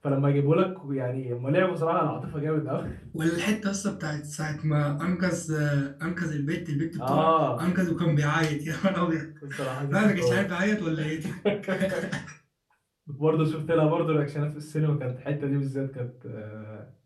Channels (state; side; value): identical; both; correlation 1.00